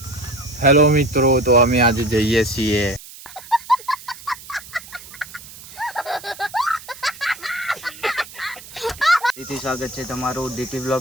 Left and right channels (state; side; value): noise; right; hiss, 17 dB below the sound